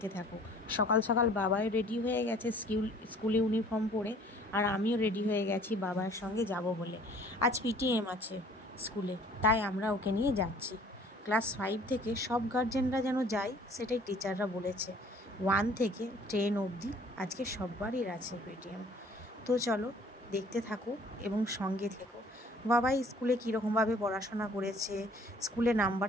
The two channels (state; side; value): normal; both; correlation 0.54